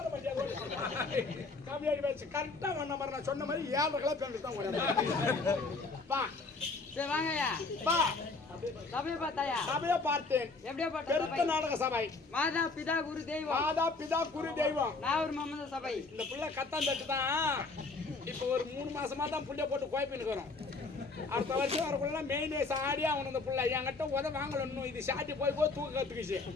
மாட்டியா கம்மியாடி வச்சு கரெக்டா வந்த மாதிரி நான் சொன்ன மாதிரி 7 கிலோ பேண்ட் தான் ஓட வா சரி வாங்கய்யா வா சபை பார்த்தாயா சபையை பார்த்தேன் எப்படியா பார்த்த பெருத்த சபை நாடக சபை மாதா பிதா குரு தெய்வம் மாதா பிதா குரு தெய்வம் நாகூர் மம்மத சபை இந்த புள்ள கத்தான் தட்டு தான் இப்போ ஒரு 3 மாசமா தான் புள்ளைய போட்டு குழப்பின்னு இருக்கிறோம் அடுத்த வருஷம் வரக்குள்ள மெயின் சாடியா அவனு இந்த புள்ள என்கிட்ட உத வாங்கல இன்னும் இது சாட்டி போய் போய் தூக்க கத்துக்குச்சு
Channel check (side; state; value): right; quieter; 3.8 dB